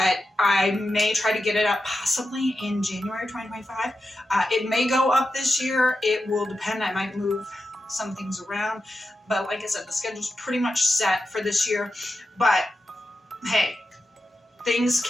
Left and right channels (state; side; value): normal; both; correlation 0.90